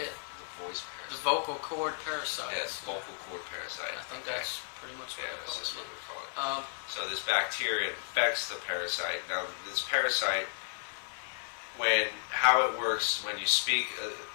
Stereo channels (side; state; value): right; silent; 55 dB below the other